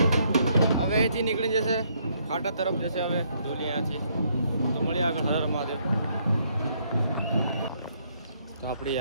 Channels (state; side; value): inverted; both; correlation -0.70